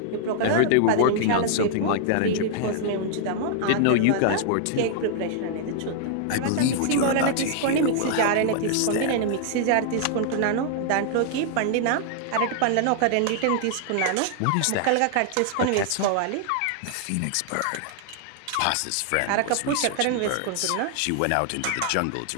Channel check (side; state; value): both; different; correlation 0.00